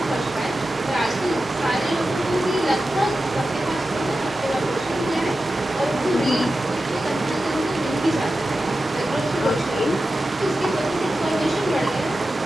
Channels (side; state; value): right; noise; hum, 29 dB below the sound